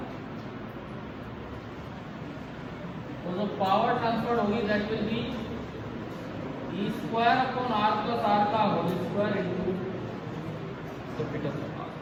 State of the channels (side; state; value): both; identical; correlation 1.00